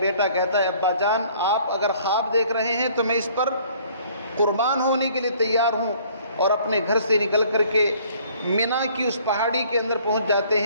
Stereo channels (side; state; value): both; inverted; correlation -0.57